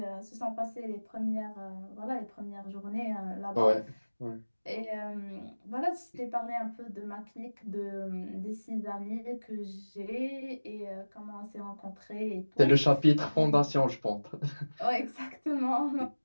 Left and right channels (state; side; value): inverted; both; correlation -1.00